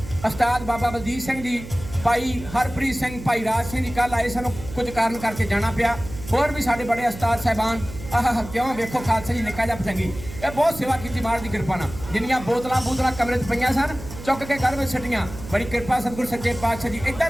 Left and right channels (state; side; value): noise; right; hum, 13 dB below the sound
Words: ਉਸਤਾਦ ਬਾਬਾ ਬਲਜੀਤ ਸਿੰਘ ਜੀ, ਭਾਈ ਹਰਪ੍ਰੀਤ ਸਿੰਘ, ਭਾਈ ਰਾਜ ਸਿੰਘ ਜੀ ਕੱਲ ਆਏ, ਸਾਨੂੰ ਕੁਝ ਕਾਰਨ ਕਰਕੇ ਜਾਣਾ ਪਿਆ। ਹੋਰ ਵੀ ਸਾਡੇ ਬੜੇ ਉਸਤਾਦ ਸਾਹਿਬਾਨ ਆਹ ਕਿਉਂ ਵੇਖੋ ਖਾਲਸਾ ਜੀ ਨਿੱਕਾ ਜਿਹਾ ਪਤੰਗੀ, ਇਹ ਬਹੁਤ ਸੇਵਾ ਕੀਤੀ ਮਹਾਰਾਜ ਦੀ ਕਿਰਪਾ ਨਾਲ। ਜਿੰਨੀਆਂ ਬੋਤਲਾਂ ਕਮਰੇ 'ਚ ਪਈਆਂ ਸਨ ਚੁੱਕ ਕੇ ਘਰ ਵਿੱਚ ਛੱਡੀਆਂ। ਬੜੀ ਕਿਰਪਾ ਸਤਿਗੁਰ ਸੱਚੇ ਪਾਤਸ਼ਾਹ ਜੀ। ਇੱਦਾਂ